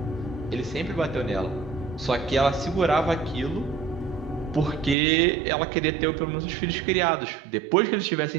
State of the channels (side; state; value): left; drops out; at 5.0 s